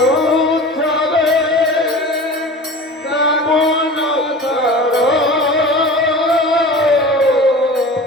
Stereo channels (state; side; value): normal; both; correlation 0.37